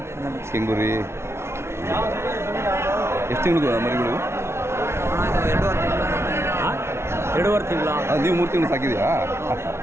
ಕೆಂಗುರಿ ಎಷ್ಟು ತಿಂಗಳು ಮರಿಗಳು? 2.5 ತಿಂಗಳು. ನೀವು 3 ತಿಂಗಳು ಸಾಕಿದೆಯಾ?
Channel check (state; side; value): late; left; 0.13 ms